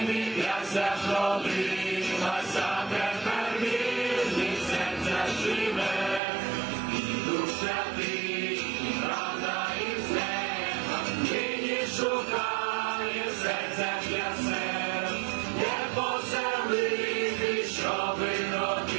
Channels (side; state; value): left; drops out; at 6.2 s